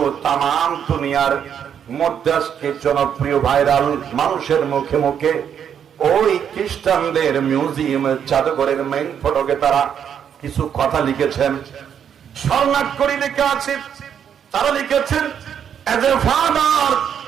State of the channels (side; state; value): left; quieter; 8.4 dB